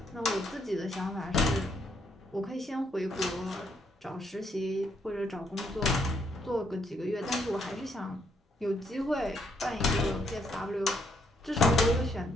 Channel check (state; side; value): normal; both; correlation 0.73